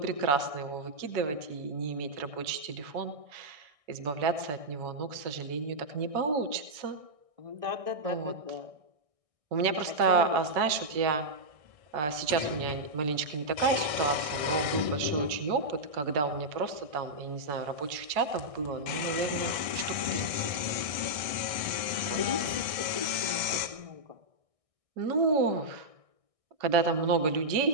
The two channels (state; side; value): late; left; 1.6 ms